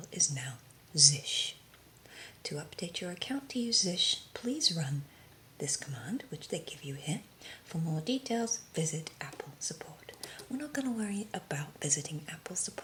is now Zsh. To update your account to use Zsh, please run this command, which they give you here. For more details, visit Apple support. We're not going to worry about visiting Apple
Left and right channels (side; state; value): both; identical; correlation 1.00